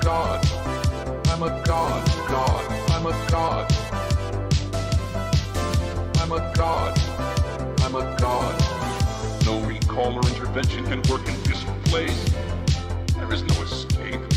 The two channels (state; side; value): identical; both; correlation 1.00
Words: god. I'm a god. God. I'm a god. I'm a god. I'm a god. No recall or intervention can work in this place. There is no escape.